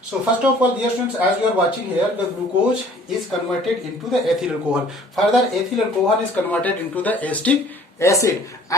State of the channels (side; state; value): both; normal; correlation 0.53